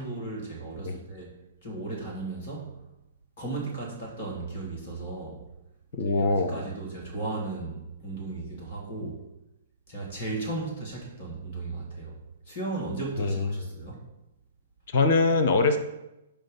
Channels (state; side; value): inverted; both; correlation -0.48